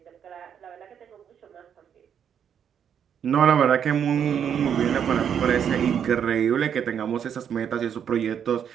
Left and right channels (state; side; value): quieter; left; 8.3 dB